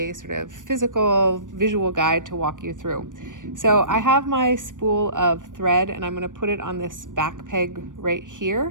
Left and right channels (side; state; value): left; late; 0.87 ms